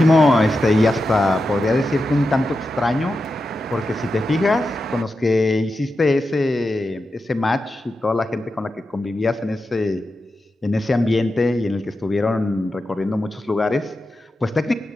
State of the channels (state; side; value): normal; both; correlation 0.90